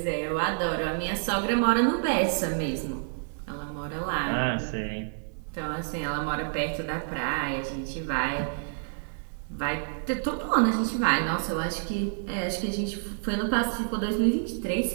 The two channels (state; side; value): silent; left; 59 dB below the other